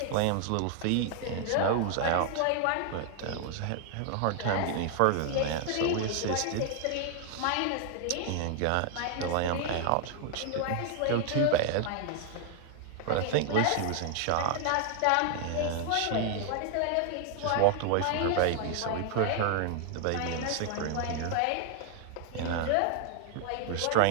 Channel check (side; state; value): both; different; correlation 0.00